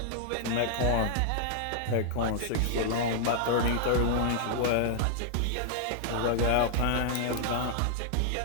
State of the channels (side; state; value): both; different; correlation -0.01